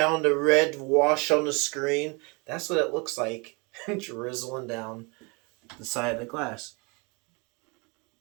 the red wash on the screen. That's what it looks like, drizzling down the side of the glass.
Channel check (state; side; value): quieter; left; 29.9 dB